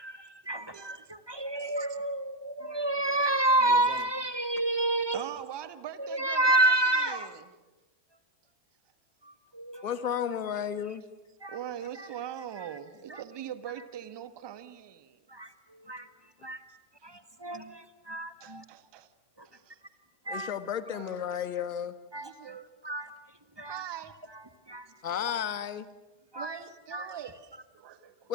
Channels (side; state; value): left; late; 1.2 ms